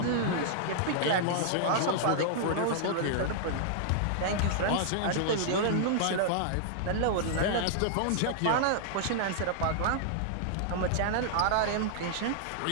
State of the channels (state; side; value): different; both; correlation -0.01